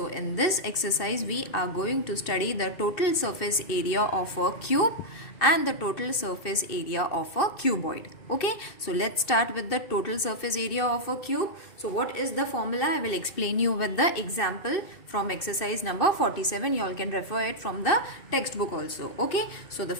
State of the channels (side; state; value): right; late; 2.6 ms